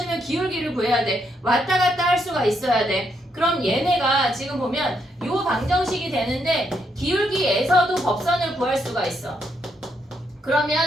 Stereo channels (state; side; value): normal; both; correlation 0.77